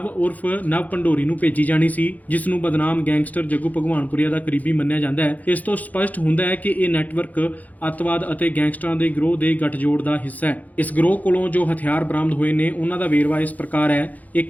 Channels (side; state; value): right; late; 0.078 ms